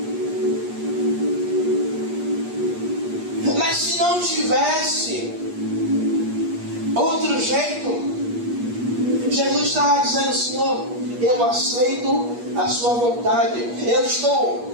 Mas se não tivesse outro jeito, Jesus estava dizendo: Senhor, eu aceito a sua vontade, eu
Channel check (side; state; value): left; late; 8.4 ms